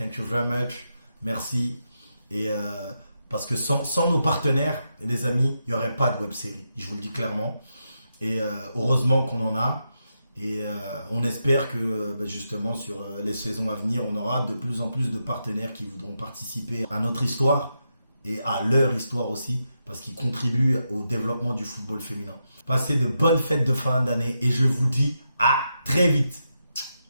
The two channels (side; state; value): both; inverted; correlation -0.85